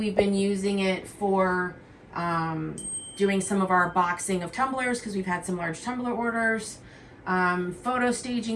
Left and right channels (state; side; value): identical; both; correlation 1.00